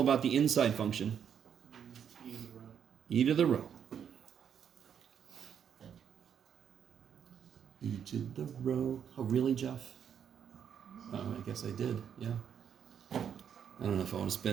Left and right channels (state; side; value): quieter; left; 8.2 dB